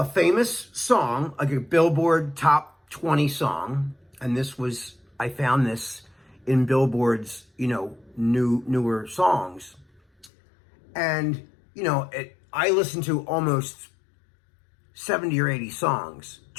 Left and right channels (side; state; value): right; drops out; at 10.3 s